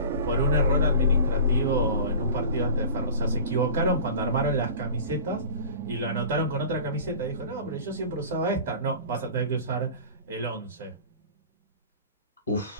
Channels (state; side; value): inverted; both; correlation -0.38